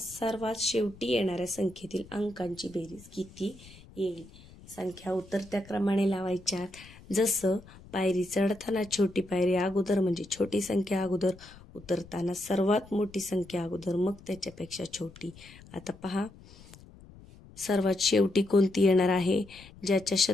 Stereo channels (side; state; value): left; noise; rumble, 21 dB below the sound